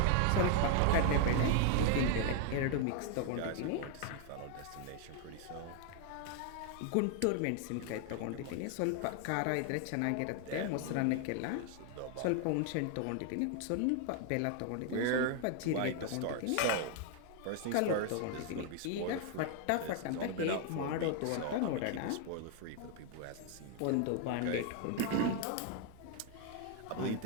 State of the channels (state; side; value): different; both; correlation 0.00